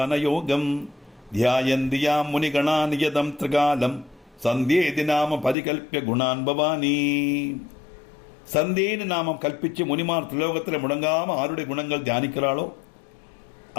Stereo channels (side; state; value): right; drops out; at 5.6 s